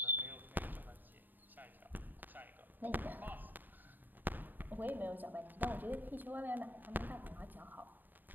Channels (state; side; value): late; left; 0.090 ms